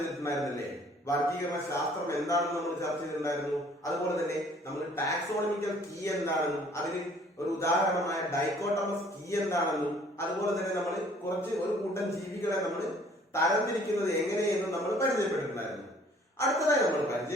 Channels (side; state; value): both; normal; correlation 0.57